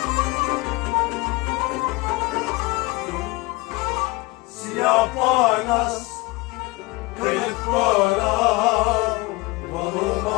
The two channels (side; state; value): right; quieter; 23.0 dB